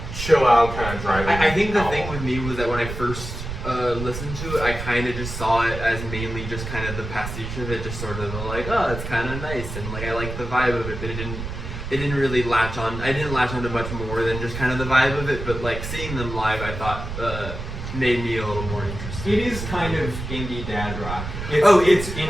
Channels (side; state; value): right; noise; rumble, 7 dB below the sound